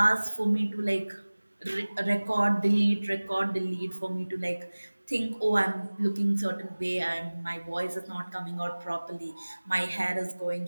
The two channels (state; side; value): inverted; both; correlation -1.00